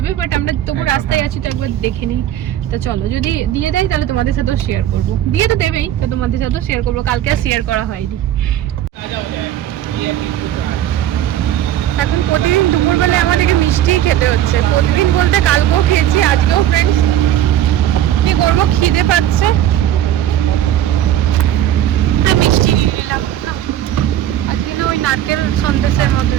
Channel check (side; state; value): left; quieter; 11.8 dB